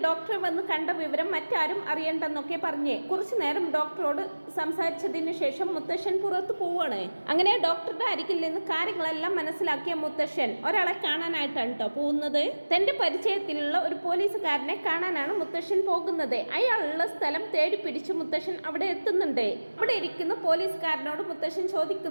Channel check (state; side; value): inverted; both; correlation -1.00